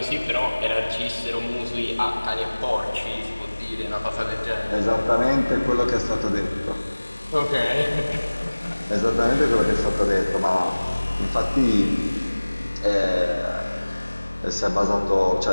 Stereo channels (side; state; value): both; inverted; correlation -1.00